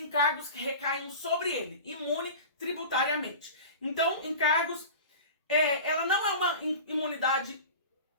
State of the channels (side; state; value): both; inverted; correlation -0.34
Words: que recaem sobre ele, imune tributariamente. Então, encargos, ela não é uma imunidade,